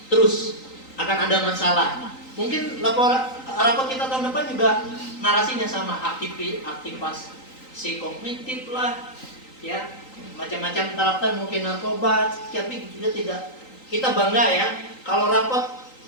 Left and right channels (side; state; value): right; late; 3.9 ms